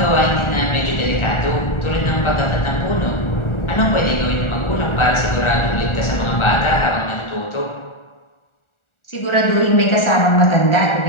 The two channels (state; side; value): late; right; 1.4 ms